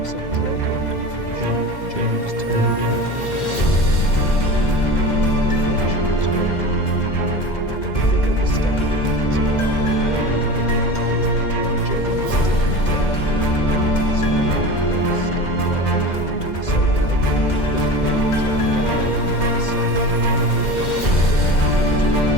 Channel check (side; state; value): right; late; 2.0 ms